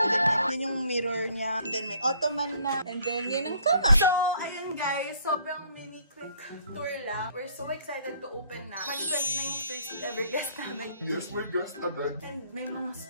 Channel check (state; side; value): inverted; both; correlation -0.61